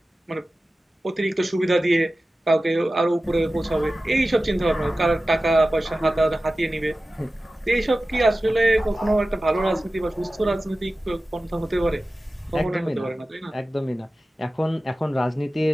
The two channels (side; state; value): both; normal; correlation 0.95